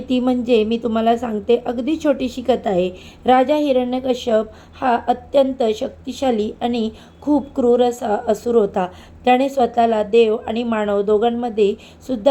ती म्हणजे मी तुम्हाला सांगते. अगदी छोटीशी कथा आहे. राजा हिरण्यकश्यप हा अत्यंत शक्तिशाली आणि खूप क्रूर असा असुर होता. त्याने स्वतःला देव आणि मानव दोघांमध्ये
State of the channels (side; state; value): both; identical; correlation 1.00